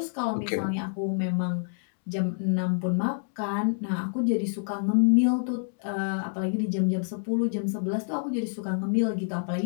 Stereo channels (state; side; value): silent; right; digital silence